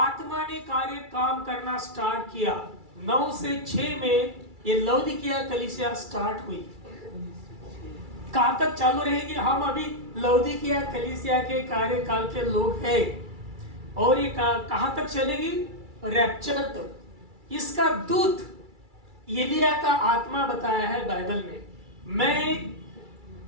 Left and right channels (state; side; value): late; left; 2.3 ms